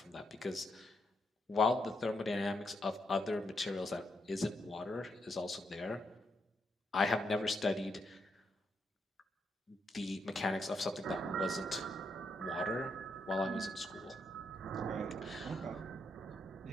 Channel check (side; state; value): both; normal; correlation 0.79